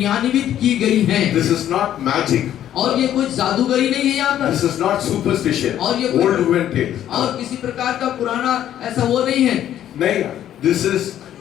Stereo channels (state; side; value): quieter; right; 11.3 dB